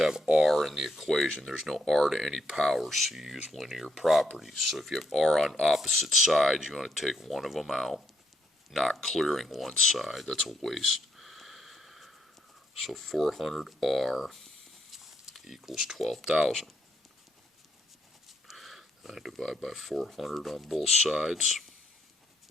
R in the equation. There's no R to any power, so you use linear properties. So if you have R on opposite sides, you want to take one of them out, not clearing one side. That's a waste. So 400R equals 12,000. I divide by 400 on both sides.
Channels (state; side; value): normal; both; correlation 0.75